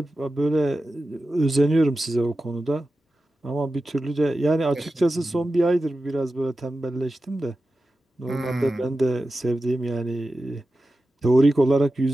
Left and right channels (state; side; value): normal; both; correlation 0.93